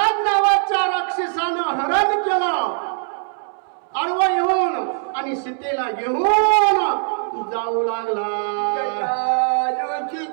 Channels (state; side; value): silent; left; 65 dB below the other